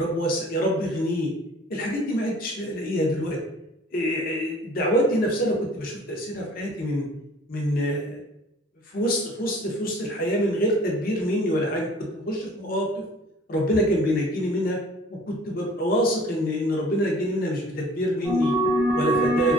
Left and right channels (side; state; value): both; normal; correlation 0.50